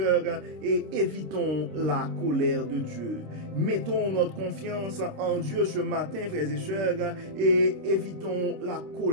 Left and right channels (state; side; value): late; left; 26 ms